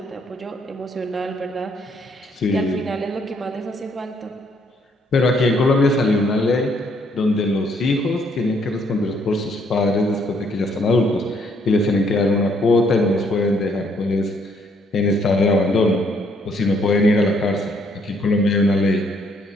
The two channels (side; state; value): both; normal; correlation 0.68